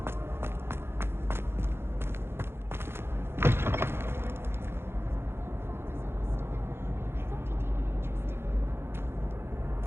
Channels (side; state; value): left; late; 0.11 ms